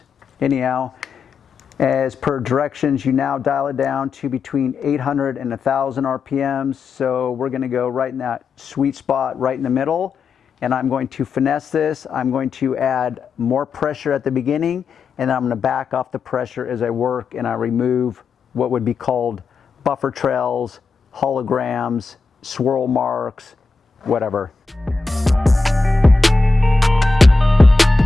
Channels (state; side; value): quieter; right; 4.2 dB